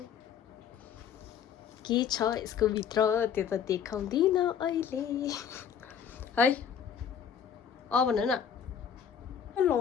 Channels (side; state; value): right; quieter; 8.0 dB